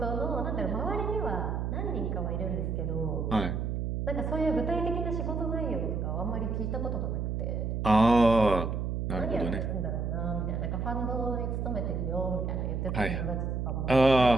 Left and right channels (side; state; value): right; noise; hum, 1 dB below the sound